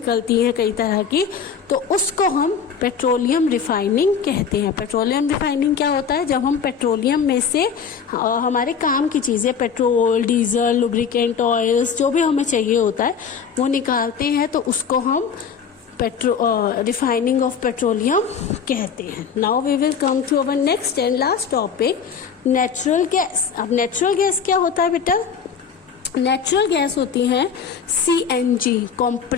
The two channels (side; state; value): right; quieter; 6.7 dB